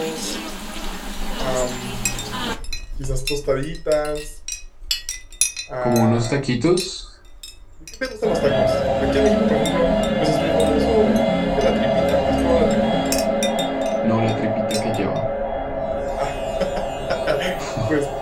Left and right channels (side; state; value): both; identical; correlation 1.00